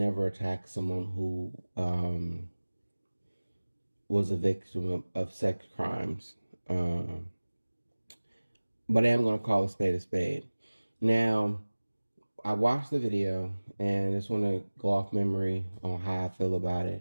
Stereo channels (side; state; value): both; inverted; correlation -1.00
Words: attack someone who was a victim of sex crimes. Um, but I am going to call a spade a spade. Now, I watched the video and I just want to go off memory on how I feel about